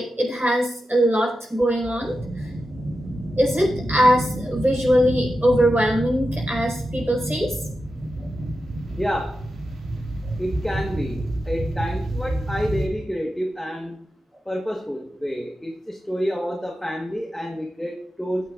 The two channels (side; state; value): both; normal; correlation 0.90